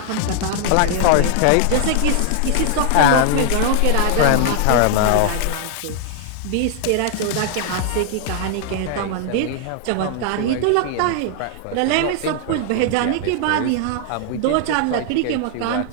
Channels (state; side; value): different; both; correlation 0.00